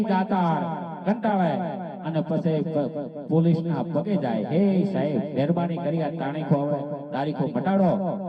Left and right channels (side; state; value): both; identical; correlation 1.00